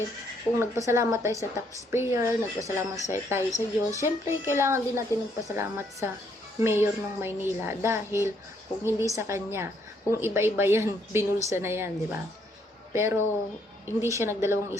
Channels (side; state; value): both; normal; correlation 0.70